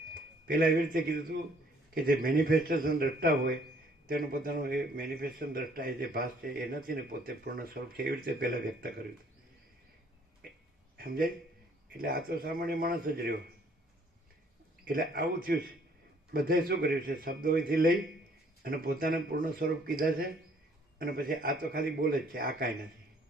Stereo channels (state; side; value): normal; both; correlation 0.61